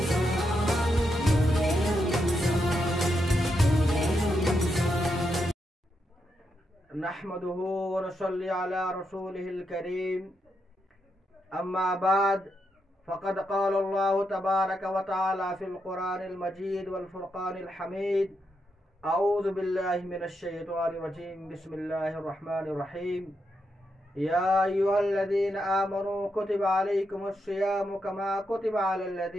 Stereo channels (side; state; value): both; normal; correlation 0.83